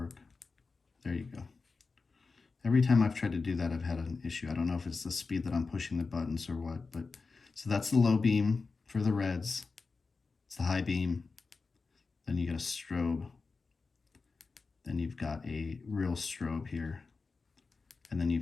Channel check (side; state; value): right; quieter; 4.3 dB